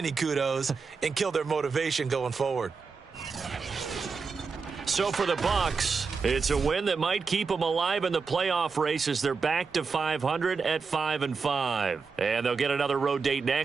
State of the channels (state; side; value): quieter; left; 5.0 dB